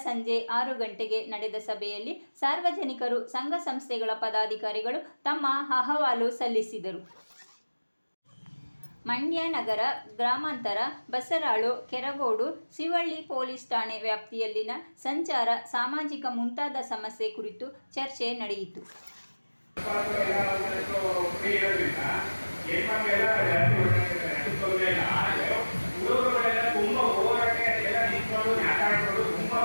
ಸಂಜೆ 6 ಗಂಟೆಗೆ ನಡೆದ ಸಭೆಯಲ್ಲಿ ಸಾರ್ವಜನಿಕರು, ಸಂಘ ಸಂಸ್ಥೆಗಳ ಪದಾಧಿಕಾರಿಗಳು ತಮ್ಮ ಅಹವಾಲು ಸಲ್ಲಿಸಿದರು. ಮಂಡ್ಯ ನಗರ, ಗ್ರಾಮಾಂತರ, ಬಸರಾಳು, ಕೆರಗೋಡು, ಶಿವಳ್ಳಿ ಪೊಲೀಸ್ ಠಾಣೆ ವ್ಯಾಪ್ತಿಯಲ್ಲಿನ ಸಂಚಾರ, ಸಾಮಾಜಿಕ ಮುಂತಾದ ಸಮಸ್ಯೆ ಕುರಿತು ಚರ್ಚೆ ನಡೆಯಿತು.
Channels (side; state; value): both; inverted; correlation -1.00